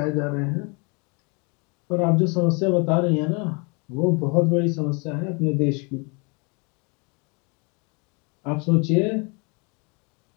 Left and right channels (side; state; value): right; quieter; 31.8 dB